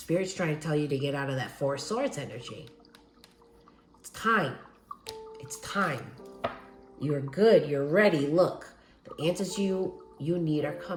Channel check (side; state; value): both; identical; correlation 1.00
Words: trying to tell you to get out of that Four of Swords energy. It's time. It's time. You're good. You're ready. Look, the answers you need are